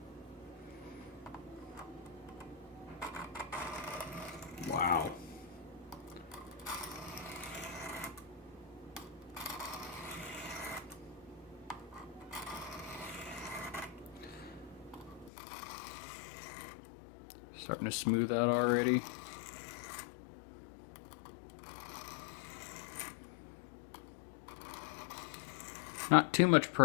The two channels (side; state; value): right; drops out; at 15.3 s